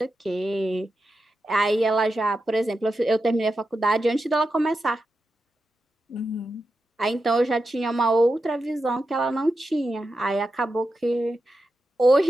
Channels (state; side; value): normal; both; correlation 0.89